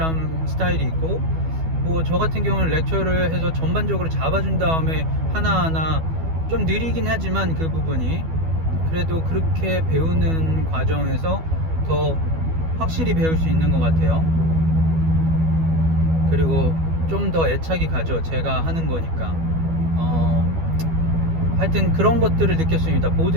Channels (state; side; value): late; left; 12 ms